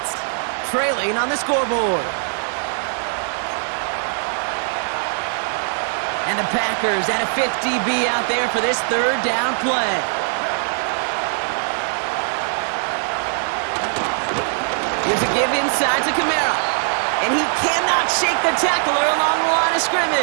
trailing on the scoreboard. And the Packers at a 50 DB out there for this 3rd down play. Here's a give inside to Kamara. And he cannot shake the tackler along the line of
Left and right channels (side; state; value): left; silent; 55 dB below the other